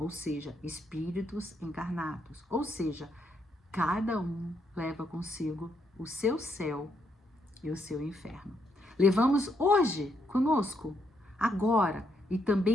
seja, espíritos encarnados. Ou seja, cada um leva consigo o seu céu e o seu inferno. Levamos hoje conosco, agora, e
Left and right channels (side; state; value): both; normal; correlation 0.76